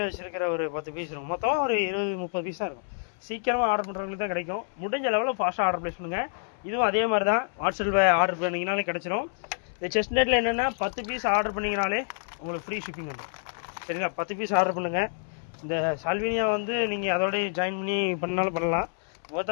வச்சுருக்கிற ஒரு 10 பீஸ் இருக்கும். மொத்தம் ஒரு 20-30 பீஸ் தான் இருக்கும். சீக்கிரமாக ஆர்டர் பண்ணுறவங்களுக்கு தான் கிடைக்கும். முடிஞ்ச லெவலில் ஃபாஸ்ட்டாக ஆர்டர் ப்ளேஸ் பண்ணுங்கள். இதுவும் அதே மாதிரி தான். வாட்ஸ்அப்பில் ஆர்டர் பண்ணிங்கனாலே கிடச்சிரும். இந்த செஸ்னட்டில் என்னென்னா 10 பீஸ் ஆர்டர் பண்ணிங்கனாலே உங்களுக்கு ஃப்ரீ ஷிப்பிங் வந்துடும். சரிங்களா? 10 பீஸ் ஆர்டர் பண்ணுங்கள். இந்த சால்வினியா வந்து நீங்கள் அதோடய ஜாயின் பண்ணி பண்ணாலும் பண்ணலாம்.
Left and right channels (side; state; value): right; silent; 60 dB below the other